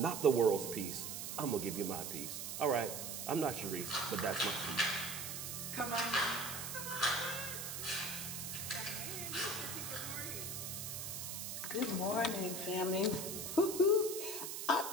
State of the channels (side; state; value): right; noise; hiss, 5 dB below the sound